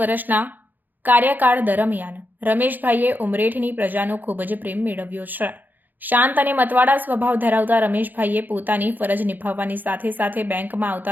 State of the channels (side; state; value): left; late; 0.086 ms